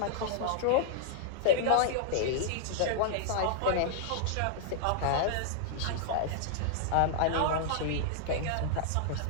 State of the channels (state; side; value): different; both; correlation -0.01